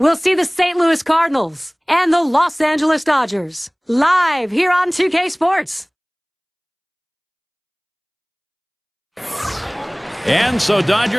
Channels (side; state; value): both; identical; correlation 1.00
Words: see the St. Louis Cardinals and the Los Angeles Dodgers live here on 2K Sports. And so